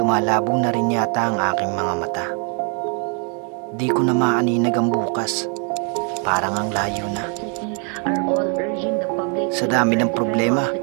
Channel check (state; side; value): quieter; left; 38.8 dB